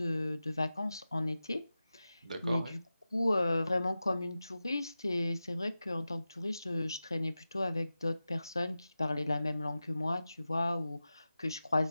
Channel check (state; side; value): inverted; both; correlation -0.94